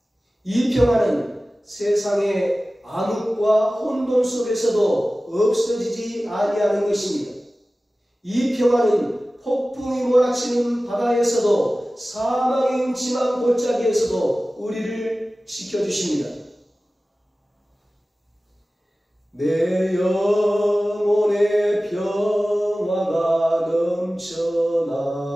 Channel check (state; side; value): normal; both; correlation 0.96